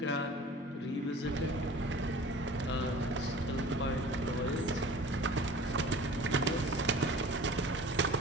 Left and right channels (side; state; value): both; normal; correlation 0.43